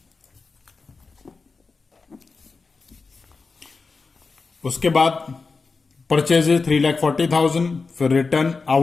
उसके बाद परचेजेज 3,40,000, फिर रिटर्न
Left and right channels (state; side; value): quieter; right; 4.3 dB